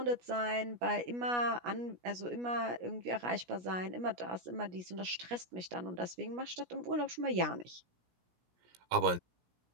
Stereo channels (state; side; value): late; left; 17 ms